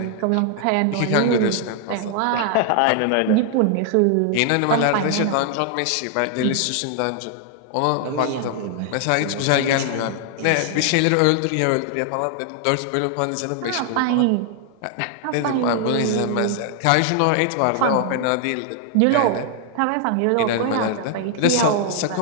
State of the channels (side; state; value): both; different; correlation 0.00